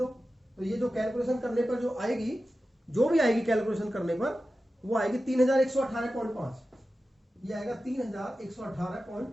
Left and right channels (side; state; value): both; normal; correlation 0.93